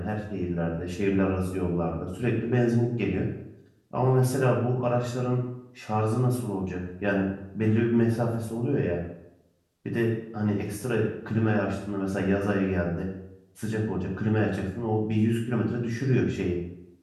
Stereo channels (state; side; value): identical; both; correlation 1.00